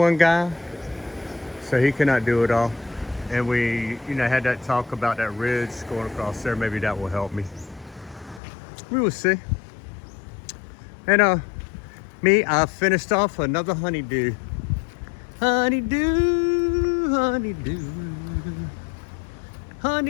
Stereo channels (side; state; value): right; drops out; at 8.4 s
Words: guy, so he cannot do it all. And we, you know, had that talk about that ridge going across there. Maybe that will help me. We will see. And I finished off another honeydew. Honeydew